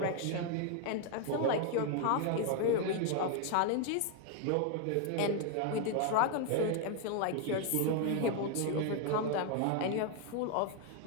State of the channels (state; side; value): different; both; correlation 0.00